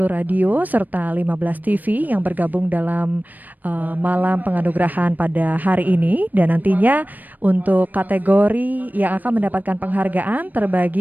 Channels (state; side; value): late; left; 0.085 ms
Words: radio serta 15 TV yang bergabung dalam malam penganugerahan pada hari ini, dan nantinya untuk kategori yang akan mendapatkan penghargaan